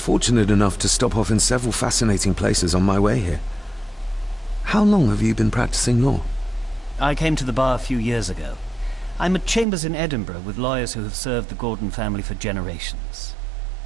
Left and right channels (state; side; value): drops out; left; at 9.7 s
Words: enough to stop off in several fascinating places on my way here. How long have you been practicing law? I came to the bar a few years ago. I'm at chambers in Edinburgh with lawyers who have served the Gordon family for generations.